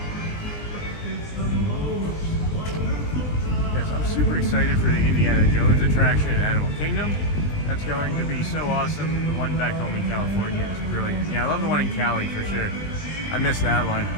Yes, I'm super excited for the Indiana Jones attraction at Animal Kingdom. That's going to be so awesome. The one back home in California is brilliant. Yeah, I love the one in Cali for sure. I missed that one.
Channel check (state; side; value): late; right; 20 ms